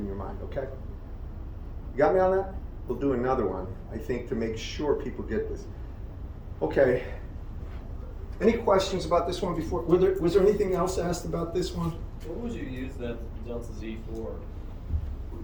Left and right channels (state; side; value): identical; both; correlation 1.00